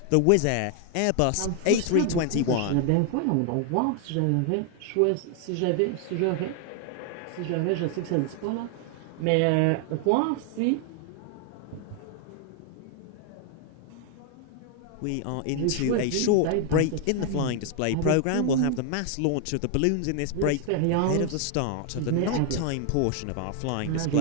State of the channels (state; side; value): different; both; correlation 0.00